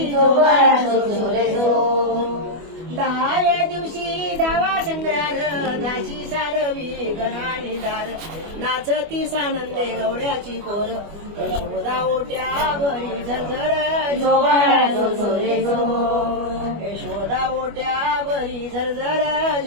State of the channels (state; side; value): late; left; 25 ms